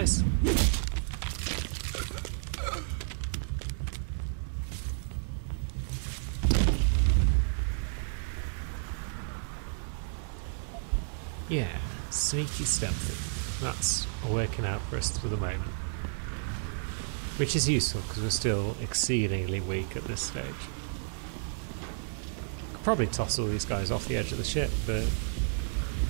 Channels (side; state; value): left; silent; 57 dB below the other